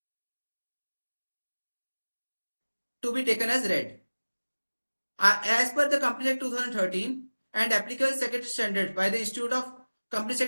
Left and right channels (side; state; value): both; inverted; correlation -1.00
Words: to be taken as read. As per the Company Act 2013 and applicable secretary standards by the Institute of Company